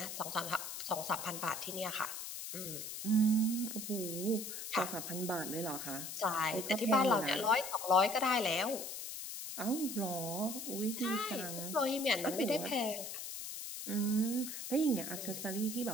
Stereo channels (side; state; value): left; noise; hiss, 7 dB below the sound